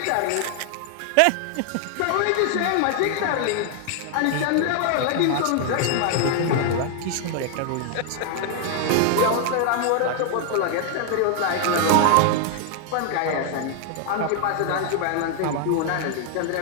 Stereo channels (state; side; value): different; both; correlation 0.00